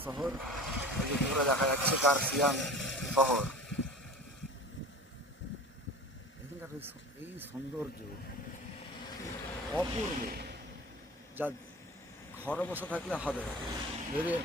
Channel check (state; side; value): normal; both; correlation 0.38